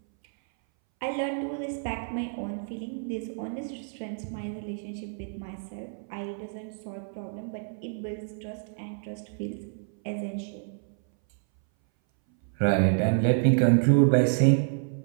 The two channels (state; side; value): silent; left; 59 dB below the other